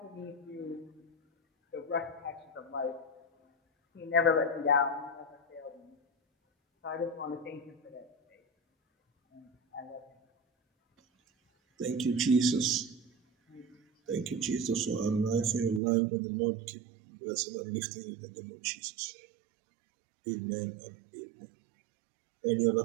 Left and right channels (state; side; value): drops out; left; at 15.8 s